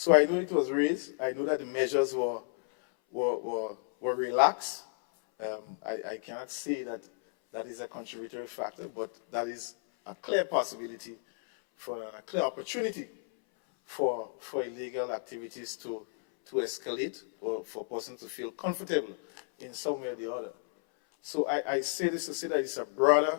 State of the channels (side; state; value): right; silent; 56 dB below the other